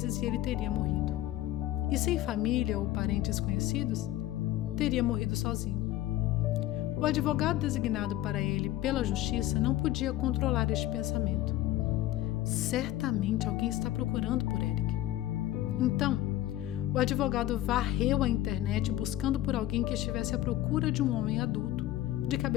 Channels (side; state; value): right; quieter; 14.4 dB